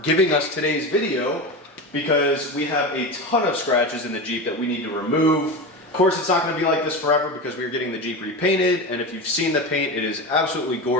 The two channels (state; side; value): normal; both; correlation 0.23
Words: giving us today's video because we have a ton of scratches in the Jeep that we need to remove. Of course, it's not going to be like this forever because we are getting the Jeep repainted, and if you've seen the paint, it is absolutely